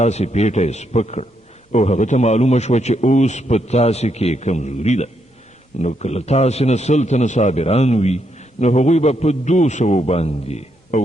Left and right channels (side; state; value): both; normal; correlation 0.78